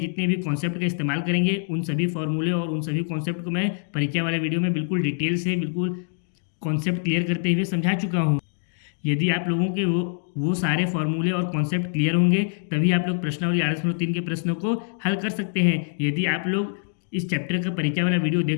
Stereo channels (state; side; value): silent; right; digital silence